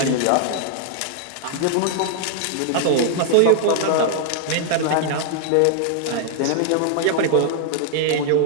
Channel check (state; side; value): different; both; correlation 0.00